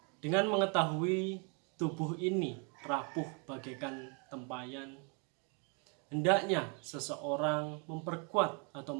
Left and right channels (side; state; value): left; quieter; 35.9 dB